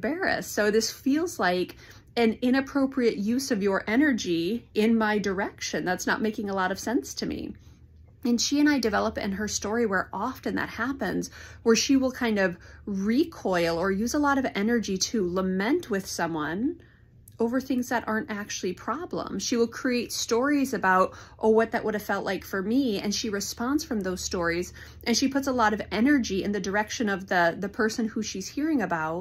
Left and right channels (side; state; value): both; identical; correlation 1.00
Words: So this feels like an inappropriate use of your energy in my direction. That's not making a lot of sense to me. And she and I develop in her story where often that happens, where she will kind of recoil or use a lot of energy to lament with someone over things that aren't actually problems. She will create stories about, oh, what that would have felt like for me. And she responds from those stories, and she puts a lot of energy in the direction of the person who she's hearing